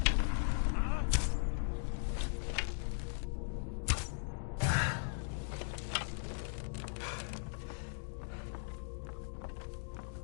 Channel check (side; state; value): right; silent; digital silence